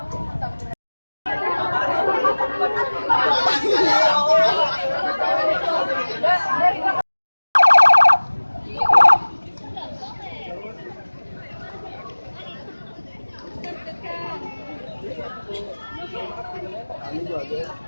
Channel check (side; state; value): both; inverted; correlation -1.00